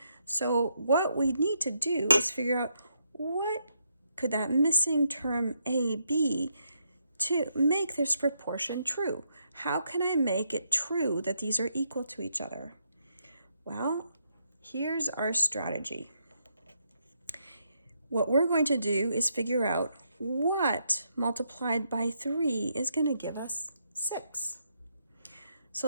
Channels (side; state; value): both; inverted; correlation -0.77